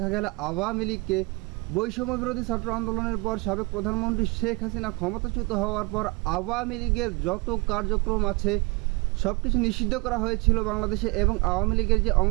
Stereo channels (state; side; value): quieter; left; 27.3 dB